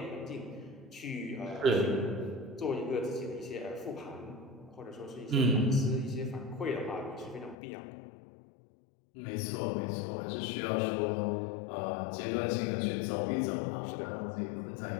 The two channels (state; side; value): drops out; right; at 7.6 s